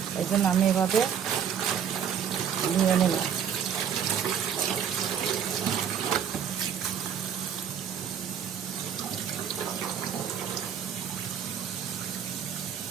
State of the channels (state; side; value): quieter; left; 8.1 dB